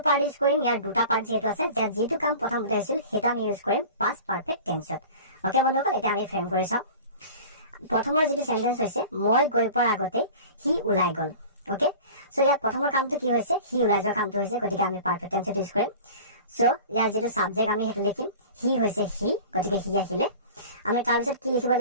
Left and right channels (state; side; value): inverted; both; correlation -0.39